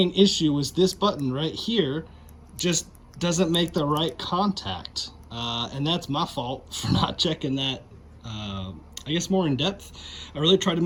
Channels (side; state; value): both; identical; correlation 1.00